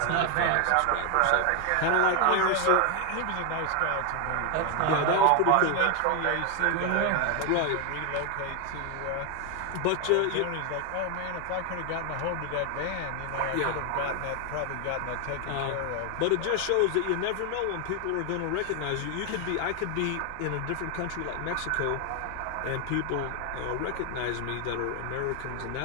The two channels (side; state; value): both; different; correlation 0.01